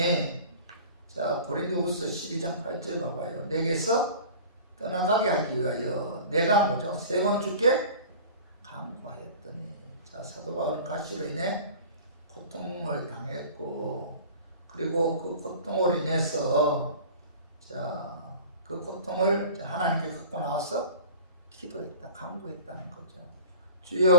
고린도후서 12장 8절 봐봐요. 내게서 떠나가게 하기 위하여 내가 뭐죠? 3번 주께 강구하였더니, 사도 바울은 가시로 인해 고통을 당했고, 그리고 그 고통으로 인해서 그 고통을 하나님께 갖고 나와서 기도했다, 강구했다는 거죠.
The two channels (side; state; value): both; inverted; correlation -0.40